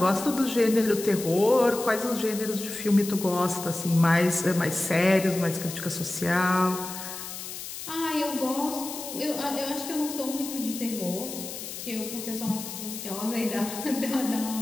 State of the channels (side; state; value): left; noise; hiss, 9 dB below the sound